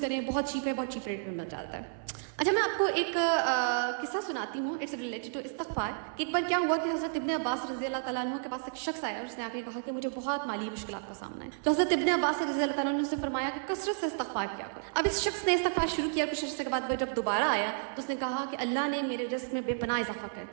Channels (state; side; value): silent; left; 57 dB below the other